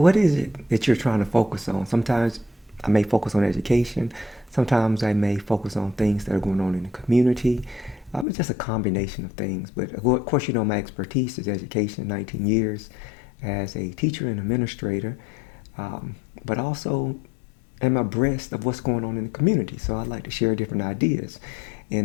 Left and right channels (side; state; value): right; drops out; at 8.2 s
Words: is it that you're trying to focus on? Sometimes I may focus on education, sometimes I may focus on things that are going on in the community. It's just a combination of things. But of course, my expertise is education, 19 years as a teacher and administrator, but also am abreast of what's going on in the community. So I like to share different ideas.